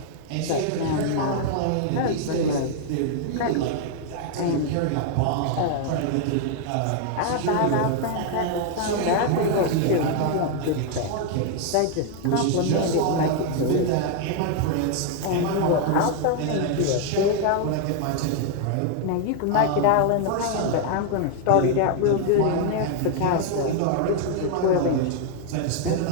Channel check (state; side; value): different; both; correlation 0.00